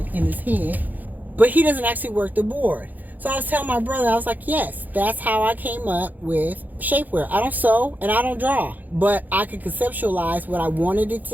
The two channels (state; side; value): late; left; 0.083 ms